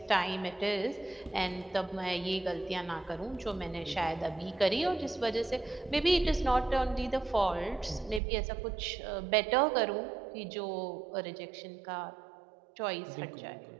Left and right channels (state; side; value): drops out; left; at 8.2 s